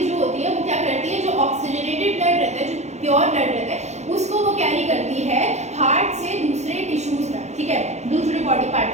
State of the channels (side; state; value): left; late; 0.33 ms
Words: जो होती है वो क्या करती है, जो ऑक्सीजनेटेड ब्लड रहता है, जो प्योर ब्लड रहता है, उसको वो कैरी करती है हार्ट से दूसरे टिश्यूज तक, ठीक है, दूसरे बॉडी पार्ट